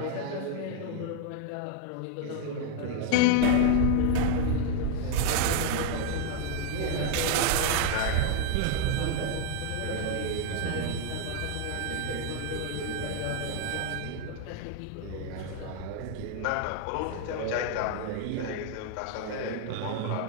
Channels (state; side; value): different; both; correlation 0.00